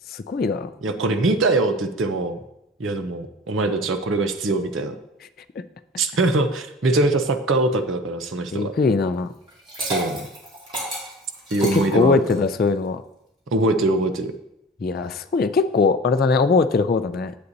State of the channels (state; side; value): normal; both; correlation 0.39